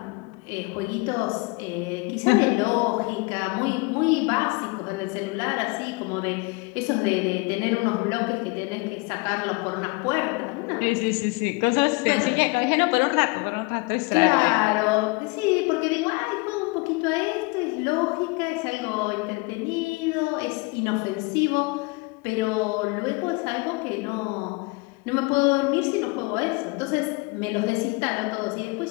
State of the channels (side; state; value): right; quieter; 27.4 dB